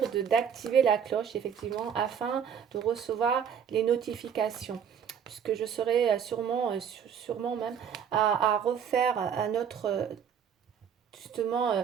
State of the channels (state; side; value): quieter; left; 7.9 dB